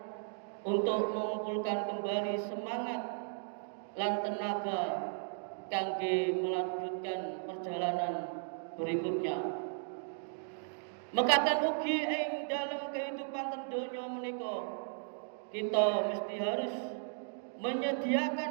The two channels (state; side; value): silent; left; digital silence